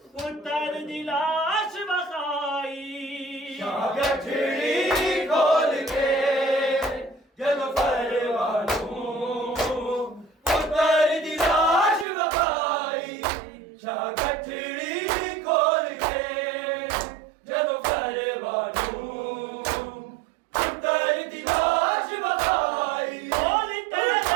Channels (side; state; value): left; drops out; at 12.1 s